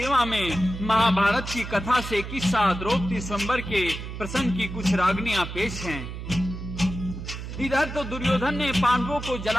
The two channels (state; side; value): noise; right; hum, 8 dB below the sound